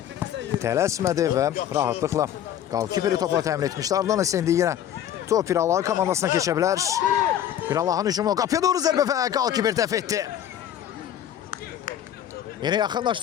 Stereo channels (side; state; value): right; quieter; 10.6 dB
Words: Tələsmədi və rahatlıqla qalkiperi topla təmin etmişdi. Ardından isə indi yenə top Pirallah komandasına keçə bilər. Pirallahın hücumu qapıya doğru zərbə və qalkiper dəf etdi. Yine